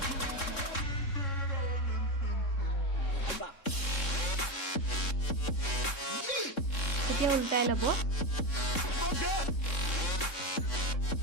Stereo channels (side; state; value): right; late; 3.7 ms